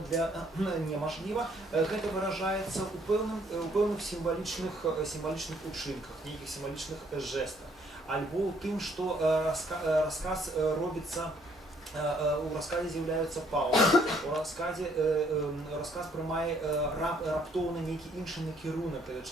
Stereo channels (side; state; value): both; normal; correlation 0.65